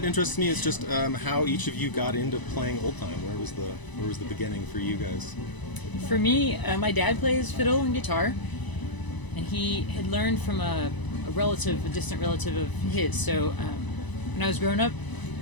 interests me is just how each of you got into playing old time. Where was the beginning for you guys? For me, my dad plays fiddle and guitar, and he had learned from a distant relative of his. So when I was growing up,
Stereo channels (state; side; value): late; right; 1.0 ms